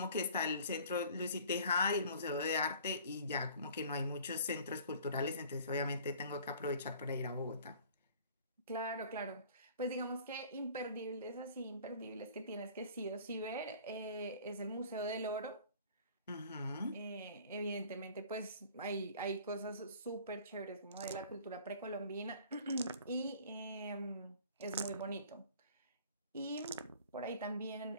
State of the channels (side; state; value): both; inverted; correlation -0.49